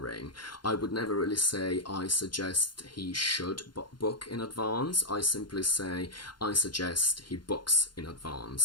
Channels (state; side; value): late; right; 0.71 ms